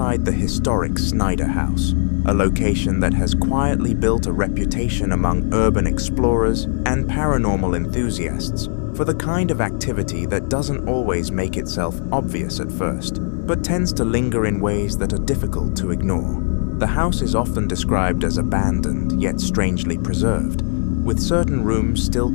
the historic Snyder house, a location that has quietly built a reputation among urban explorers and paranormal enthusiasts for the kind of activity that doesn't always make itself obvious at first, but tends to linger in ways that are difficult to ignore. The house is often described as abandoned yet strangely preserved, with certain rooms still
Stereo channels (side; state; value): right; silent; digital silence